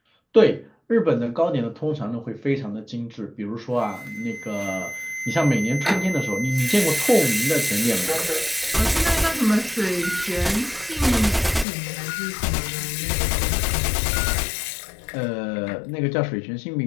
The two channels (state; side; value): drops out; right; at 11.7 s